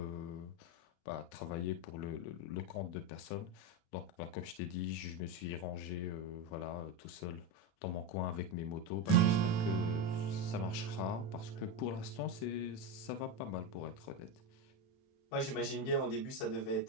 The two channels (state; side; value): late; right; 36 ms